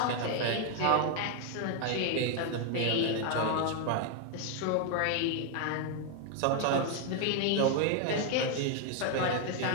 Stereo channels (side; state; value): both; different; correlation 0.00